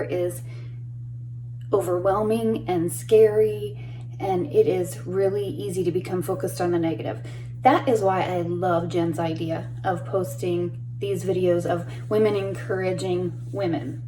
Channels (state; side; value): identical; both; correlation 1.00